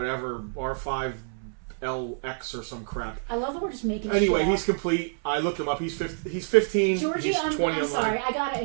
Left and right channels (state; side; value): silent; left; 60 dB below the other